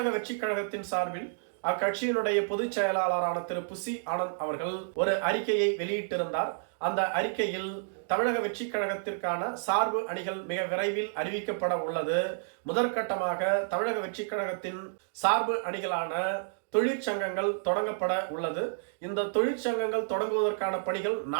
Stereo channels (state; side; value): silent; left; digital silence